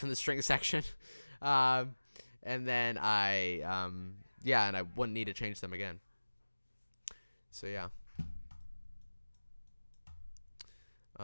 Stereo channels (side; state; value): both; inverted; correlation -1.00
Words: in the string section, and then and I wouldn't need to change them again. So yeah.